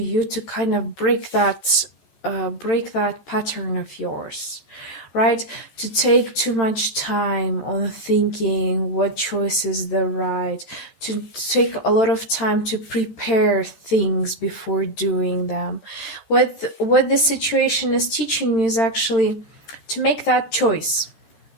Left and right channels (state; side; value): late; right; 13 ms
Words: to kind of break that pattern of yours, right? To take too much time on thinking what choice is the right, to take a lot of time to prepare things before doing them. What this situation is teaching you is actually to make that choice.